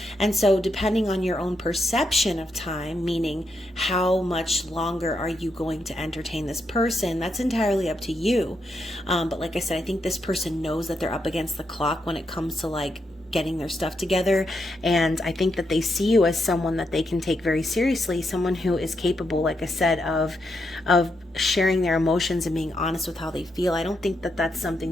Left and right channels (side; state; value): both; normal; correlation 0.81